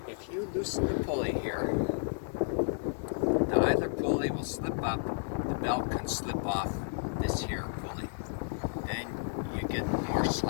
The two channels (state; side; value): silent; right; digital silence